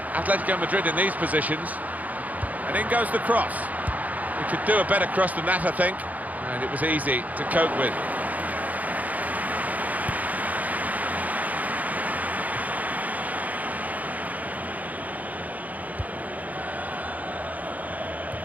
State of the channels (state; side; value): late; left; 0.077 ms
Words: Atletico Madrid in these positions. And in goes the cross. We could do a better cross than that, I think. And it was easy to cope with.